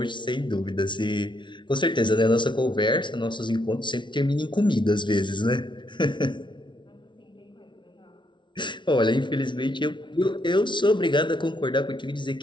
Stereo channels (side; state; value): right; late; 0.23 ms